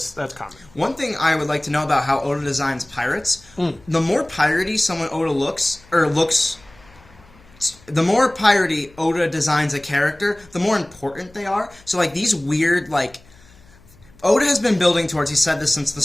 that's coming. One thing I would like to know about how Oda designs pirates, the more piratey someone Oda looks, the more piratey Oda designs a character, the more important they are. So, like, these weird, like, Oda has been building towards, he said this since the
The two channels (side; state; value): left; noise; hum, 27 dB below the sound